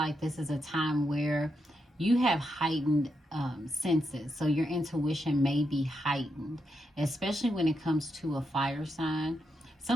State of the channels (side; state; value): both; normal; correlation 0.83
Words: this is a time where you have heightened senses. So your intuition may be heightened, especially when it comes to a fire sign.